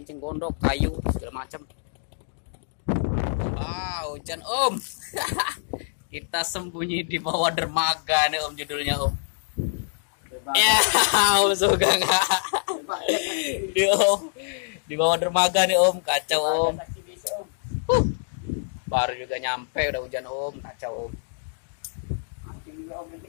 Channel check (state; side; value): silent; right; digital silence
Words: encing gondok, kayu segala macam. Hujan Om. Kita sembunyi di bawah dermaga nih Om, judulnya Om. Ya, Om Sugeng. Di bawah dermaga nih Om, kacau Om. Baru juga nyampe udah hujan Om, kacau Om.